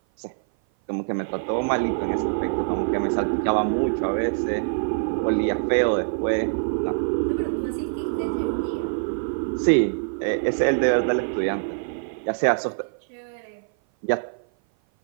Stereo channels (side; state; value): left; silent; 57 dB below the other